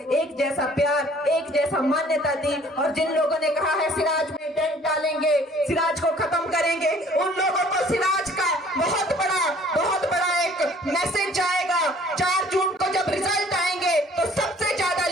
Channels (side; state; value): both; normal; correlation 0.55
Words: एक जैसा प्यार, एक जैसा मान्यता दी। और जिन लोगों ने कहा है सिराज में डेंट डालेंगे, सिराज को खत्म करेंगे, उन लोगों को सिराज का बहुत बड़ा एक मैसेज जाएगा। 4 जून को जब रिजल्ट आएंगे तो सबसे ज्यादा